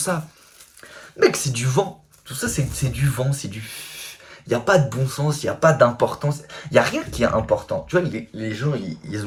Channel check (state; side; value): identical; both; correlation 1.00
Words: Mec, c'est du vent. Tout ça, c'est du vent, c'est du... Il n'y a pas de bon sens, il n'y a pas d'importance. Il n'y a rien qui est important. Tu vois, les gens, ils